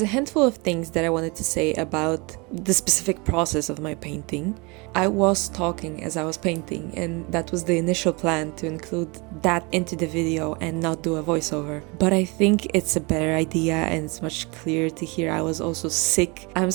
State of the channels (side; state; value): left; quieter; 28.2 dB